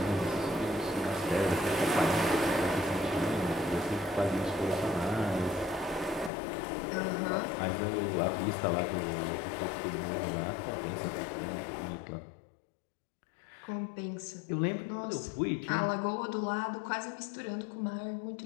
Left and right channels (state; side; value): drops out; right; at 6.3 s